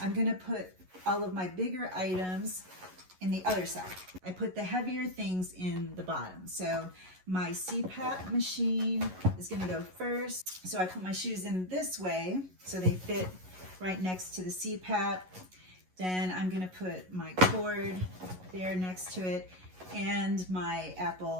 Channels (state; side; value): late; left; 11 ms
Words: going to put all of my bigger items in the other side. I put the heavier things in the bottom. So my CPAP machine is gonna go first. So I put my shoes in this way so they fit right next to the CPAP. Then I'm gonna put my cord there next to it and my